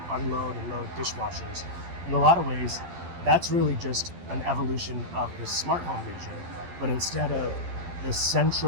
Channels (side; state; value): left; late; 12 ms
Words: unload and load dishwashers. In a lot of ways, that's really just an evolution of the smart home vision. But instead of the